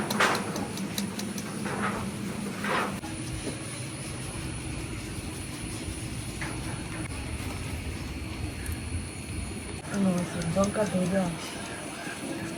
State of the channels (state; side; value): identical; both; correlation 1.00